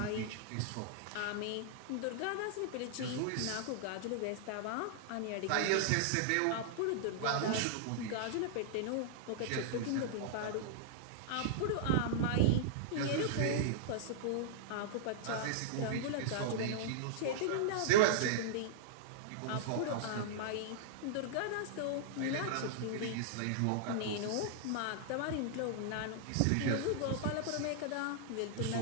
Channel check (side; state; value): both; different; correlation -0.01